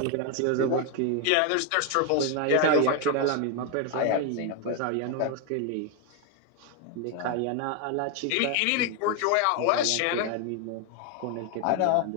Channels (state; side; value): different; both; correlation 0.01